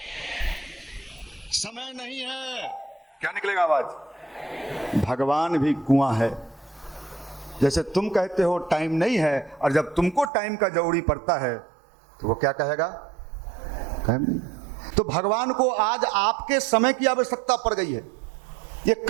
समय नहीं है, क्या निकलेगा आवाज? भगवान भी कुआं है। जैसे तुम कहते हो टाइम नहीं है, और जब तुमको टाइम का जरूरी पड़ता है तो वो क्या कहेगा? टाइम नहीं। तो भगवान को आज आपके समय की आवश्यकता पड़ गई है। ये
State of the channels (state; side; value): drops out; left; at 10.3 s